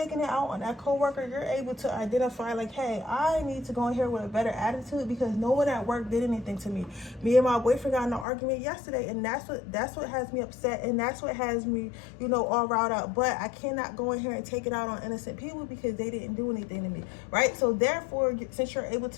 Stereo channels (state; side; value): drops out; right; at 8.2 s